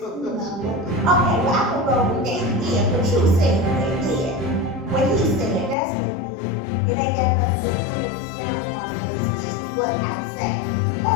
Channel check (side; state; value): right; drops out; at 5.8 s